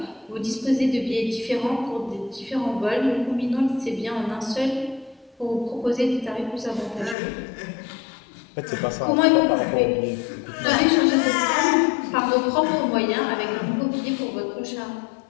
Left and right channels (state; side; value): drops out; right; at 7.2 s